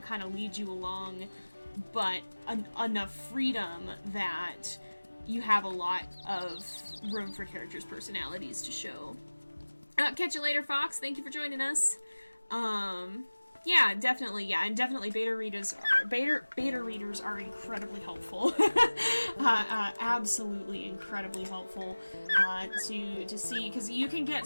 kind of lead you along, but enough freedom that you have a lot of room for characters' personalities to show. Catch you later, Fox. Thank you for joining us. Yeah, definitely, and definitely beta readers are incredibly helpful. Absolutely incredibly helpful to see, because you can get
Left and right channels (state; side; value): inverted; both; correlation -1.00